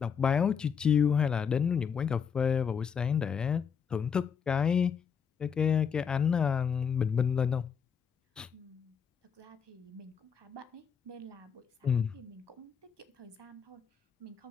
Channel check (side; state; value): right; quieter; 7.0 dB